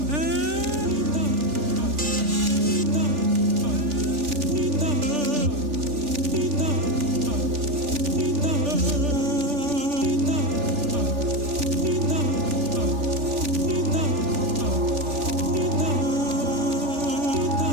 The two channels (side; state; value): left; late; 3.4 ms